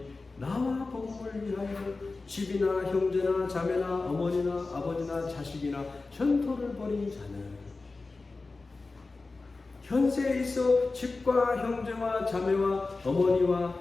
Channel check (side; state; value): right; quieter; 3.7 dB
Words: 나와 복음을 위하여 집이나 형제나 자매나 어머니나 아버지나 자식이나 전토를 벌인 자는 현세에 있어 집과 형제와 자매와